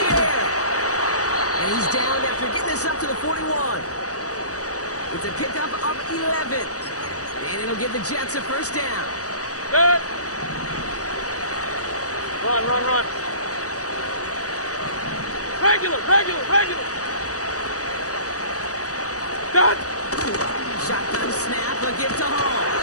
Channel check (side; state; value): right; late; 0.66 ms